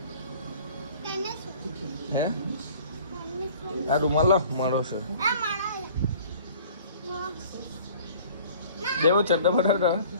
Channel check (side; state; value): both; inverted; correlation -0.50